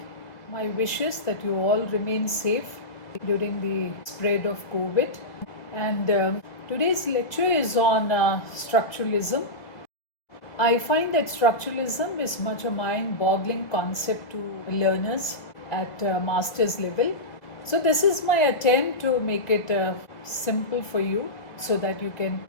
My wish is that you all remain safe during the spread of COVID. And today's lecture is on structuralism. I find that structuralism is much a mind-boggling concept to learners at master's level. So this is my attempt to make it simple for you so that you can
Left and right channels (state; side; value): late; right; 1.9 ms